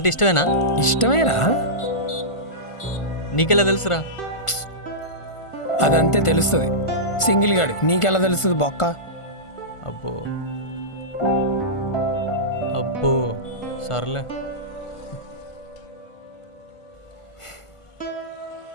ఇష్టమేనా? ఇష్టమేరా, నీకెలా తెలుసురా? అదంతే తెలుస్తుంది. సింగిల్ గాడు నీకెలా తెలుస్తుంది బొక్క? అబ్బో అబ్బో, సర్లే.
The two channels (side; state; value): right; late; 1.5 ms